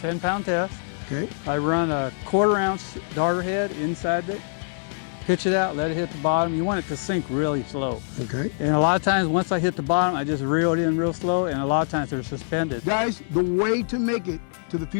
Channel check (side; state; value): right; silent; digital silence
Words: test. Okay. I run a 1/4 ounce darter head inside it, pitch it out, let it hit the bottom. You want it to sink really slow. Okay. And a lot of times, once I hit the bottom, I just reel it in real slow, and a lot of times they're suspended. Guys, the way to make it to the